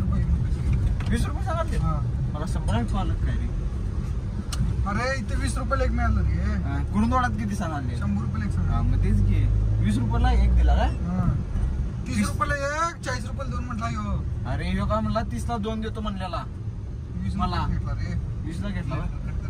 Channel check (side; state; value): both; identical; correlation 1.00